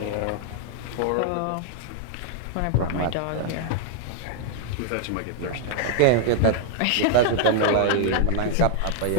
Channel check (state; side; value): different; both; correlation 0.00